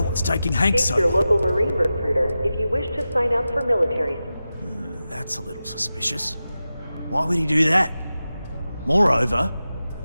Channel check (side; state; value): both; inverted; correlation -0.93